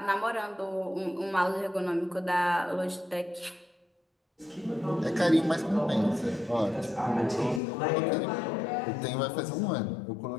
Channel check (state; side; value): drops out; right; at 7.6 s